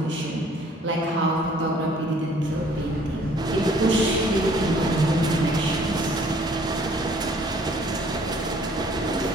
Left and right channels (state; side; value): normal; both; correlation 0.58